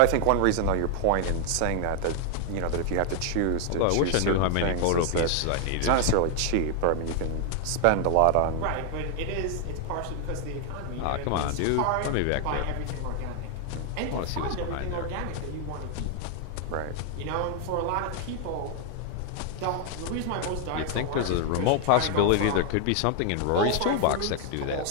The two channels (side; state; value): both; different; correlation 0.00